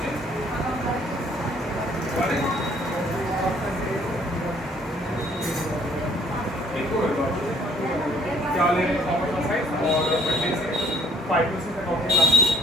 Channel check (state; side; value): normal; both; correlation 0.60